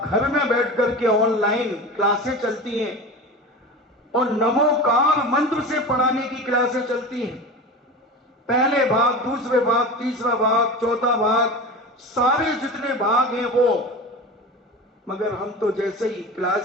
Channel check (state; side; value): normal; both; correlation 0.30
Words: घर में बैठ करके ऑनलाइन क्लासें चलती हैं और नमोकार मंत्र से पढ़ाने की क्लासें चलती हैं। पहले भाग, दूसरे भाग, तीसरा भाग, चौथा भाग, सारे जितने भाग हैं वो। मगर हम तो जैसे ही